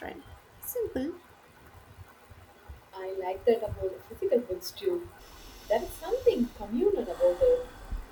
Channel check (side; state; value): both; identical; correlation 1.00